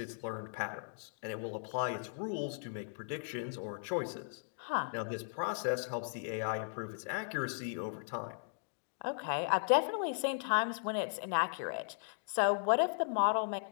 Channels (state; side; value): silent; right; digital silence